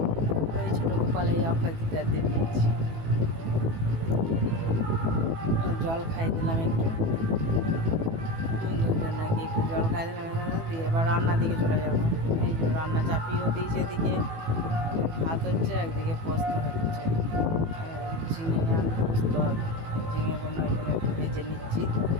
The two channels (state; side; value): late; left; 18 ms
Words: এই ছোটো গোপাল এই অক্ষয় তৃতীয়ার দিন দিয়েছি। জল খাই দিলাম একটু, দুজন নাকি একটু জল খাই দিলাম, দিয়ে এবার রান্নার দিকে চলে যাবো। এই যে রান্না চাপিয়েও দিয়েছে, এদিকে ভাত হচ্ছে, একদিকে পোস্ত হচ্ছে, ঝিঙে আলু পোস্ত হবে। ঝিঙেগুলো ওই জন্য একটু ভেজে নিচ্ছি